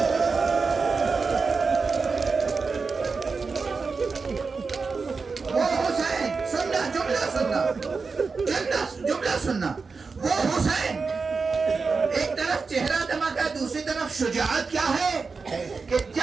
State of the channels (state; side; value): quieter; left; 4.6 dB